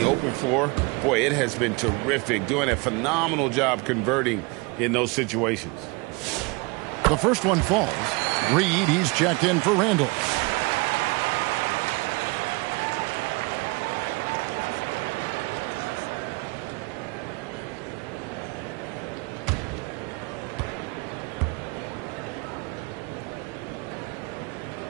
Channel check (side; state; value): left; quieter; 27.2 dB